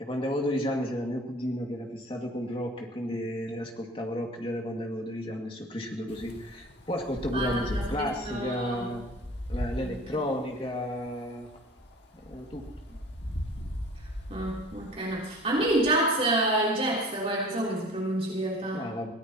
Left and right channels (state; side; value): normal; both; correlation 0.45